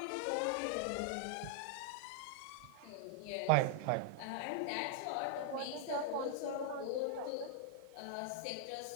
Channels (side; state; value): both; different; correlation -0.01